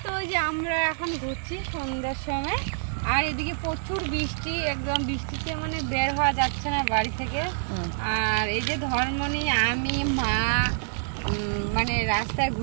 তো যে আমরা এখন ঘুরছি সন্ধ্যার সময়, আর এদিকে প্রচুর বৃষ্টি, একদম বৃষ্টিতে মানে বের হওয়া যাচ্ছে না বাড়ি থেকে। আর এই যে ধর্মনি, আমি, মা মানে রাস্তায়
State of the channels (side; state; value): left; silent; digital silence